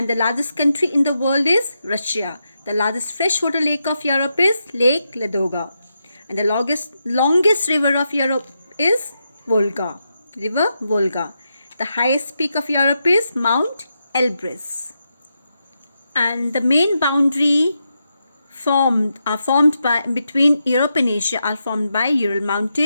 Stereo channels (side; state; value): both; inverted; correlation -0.85